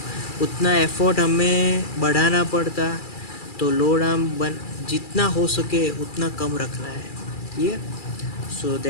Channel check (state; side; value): late; right; 2.3 ms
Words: उतना एफर्ट हमें बढ़ाना पड़ता। तो लोड आर्म जितना हो सके उतना कम रखना है। Yeah, so